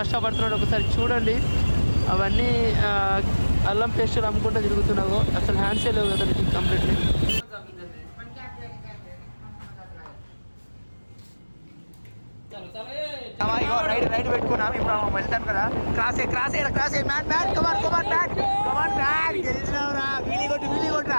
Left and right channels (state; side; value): inverted; both; correlation -1.00